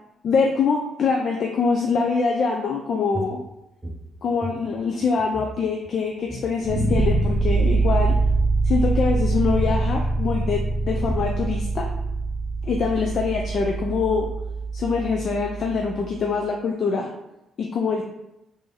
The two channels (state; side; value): normal; both; correlation 0.76